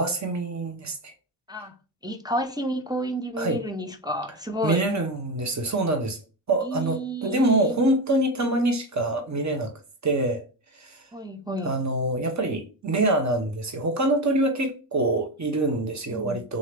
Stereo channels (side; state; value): both; normal; correlation 0.16